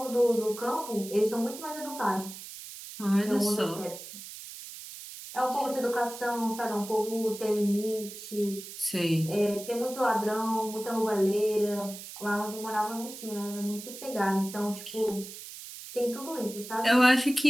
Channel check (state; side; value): noise; right; hiss, 12 dB below the sound